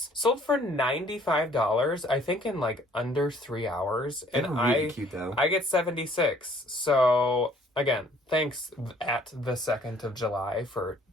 sold for $95, I think in like under 3 hours, and really cute, though. I get 76. So again, thanks at the 2nd of July for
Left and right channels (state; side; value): normal; both; correlation 0.59